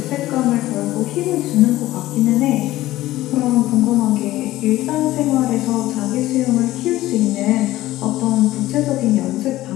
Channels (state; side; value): quieter; right; 16.0 dB